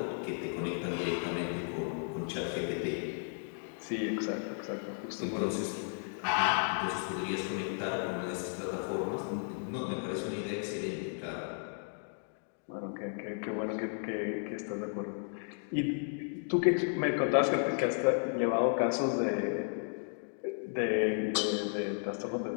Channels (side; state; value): right; silent; 55 dB below the other